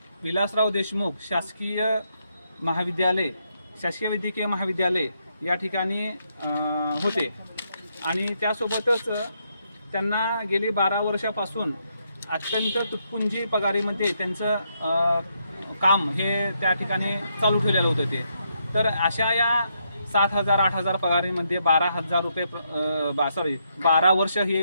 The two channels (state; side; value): inverted; both; correlation -0.78